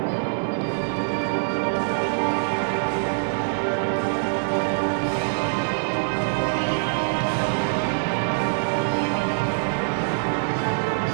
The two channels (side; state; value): left; silent; digital silence